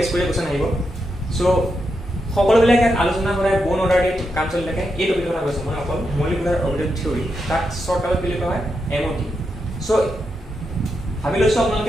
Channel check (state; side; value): normal; both; correlation 0.85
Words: কৰি কোৱেশ্চন আহিব। সো সকলোবিলাক আলোচনা কৰা বন অৰ্ডাৰ দি কাম চলি থাকে। এই টপিকৰ কথা কৈছো মই অকল মলিকুলাৰ অৰ্বিটেল থিওৰি তাক শৰ্টকাটত বুলি কোৱা হয় এমঅটি। সো ভাবি লৈছো